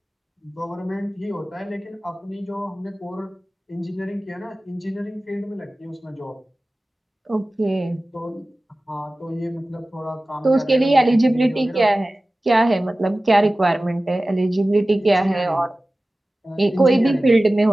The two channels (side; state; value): both; normal; correlation 0.97